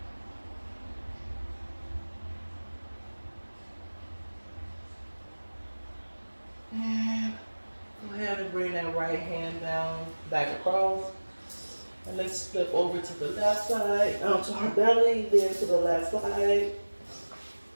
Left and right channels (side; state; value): both; inverted; correlation -1.00